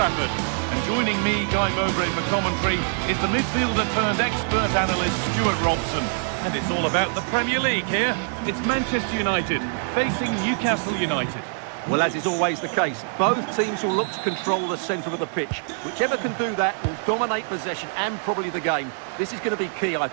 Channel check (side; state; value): left; silent; 59 dB below the other